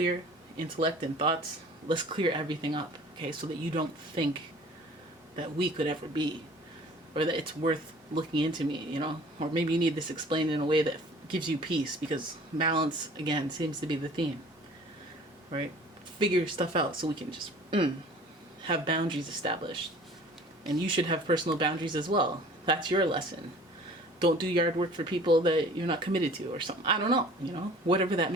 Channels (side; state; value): both; normal; correlation 0.48